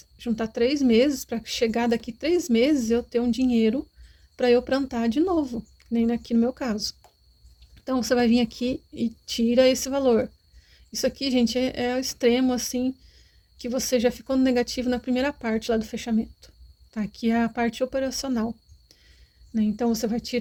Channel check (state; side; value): identical; both; correlation 1.00